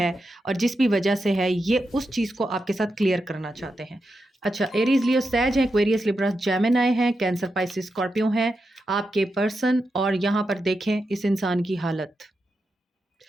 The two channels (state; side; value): normal; both; correlation 0.87